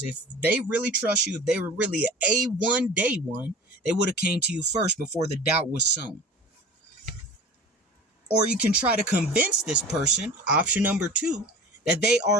if they really trust you, if they were really A1 day one, they would have came to you first before the doubt was sown. Or you can try to convince this person, option number 2, that they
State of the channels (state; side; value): normal; both; correlation 0.38